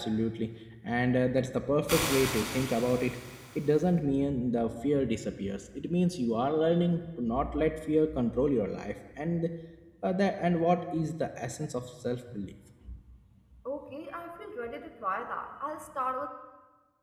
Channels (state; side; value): identical; both; correlation 1.00